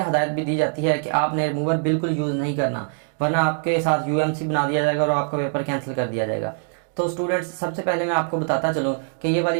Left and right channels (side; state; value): left; silent; digital silence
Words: हदायत भी दी जाती है कि आपने रिमूवर बिल्कुल यूज़ नहीं करना, वरना आपके साथ यूएमसी बना दिया जाएगा और आपका पेपर कैंसिल कर दिया जाएगा। तो स्टूडेंट्स, सबसे पहले मैं आपको बताता चलूँ कि ये वाली